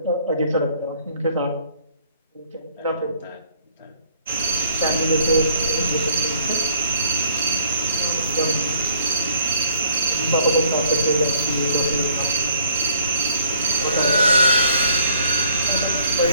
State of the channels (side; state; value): both; inverted; correlation -0.61